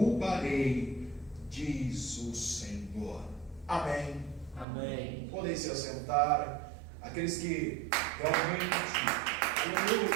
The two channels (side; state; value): left; drops out; at 4.7 s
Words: diz o Senhor. Amém. Amém. Podem se assentar, aqueles que realmente adoram